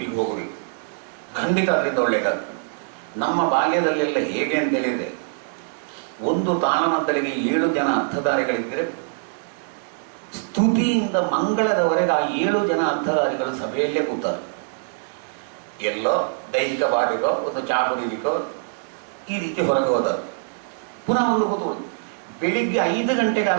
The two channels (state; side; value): silent; left; digital silence